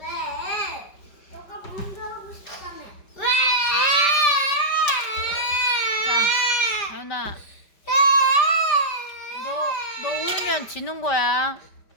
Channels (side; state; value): right; late; 5.0 ms